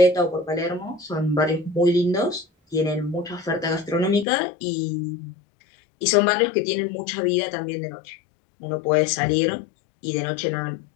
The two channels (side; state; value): right; drops out; at 4.2 s